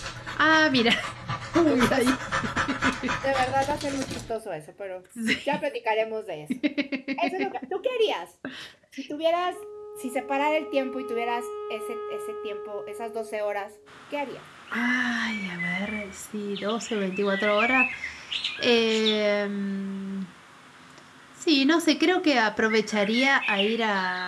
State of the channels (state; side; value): identical; both; correlation 1.00